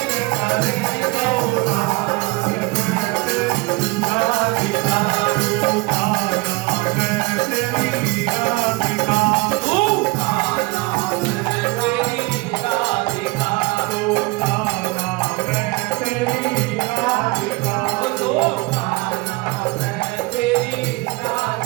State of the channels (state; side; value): quieter; left; 24.5 dB